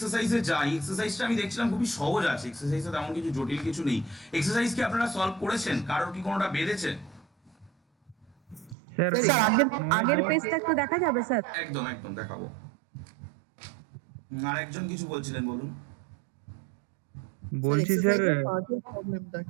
যাই। এক্সারসাইজটা আমি দেখছিলাম খুবই সহজ আছে, এক্সারসাইজে তেমন কিছু জটিল কিছু নেই। এক্সারসাইজ কি আপনারা সলভ করেছেন? কারোর কি কোনোটা বেঁধেছে? স্যার স্যার আগের পেজটা একটু দেখা যাবে স্যার? একদম একদম দেখাবো। আর একজন কিছু বলছিলেন, বলুন। বলছি স্যার প্রবলেমটা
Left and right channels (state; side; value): drops out; left; at 8.8 s